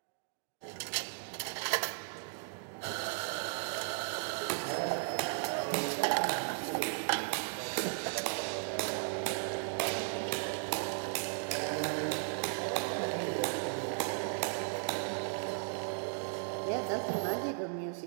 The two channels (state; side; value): silent; left; digital silence